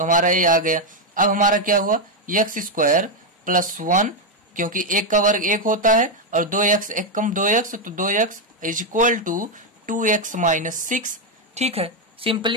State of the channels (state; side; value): normal; both; correlation 0.03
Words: हमारा ये आ गया। अब हमारा क्या हुआ, x स्क्वायर प्लस 1, क्योंकि 1 का वर्ग 1 होता है और 2x 1 कम 2x, तो 2x is equal to 2x minus 6, ठीक है।